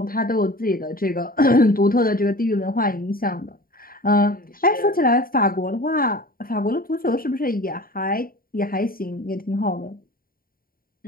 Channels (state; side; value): late; right; 0.42 ms